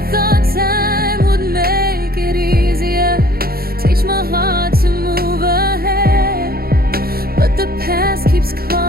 thought time would make it easier, teach my heart to move ahead, but the past keeps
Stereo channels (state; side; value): late; left; 0.44 ms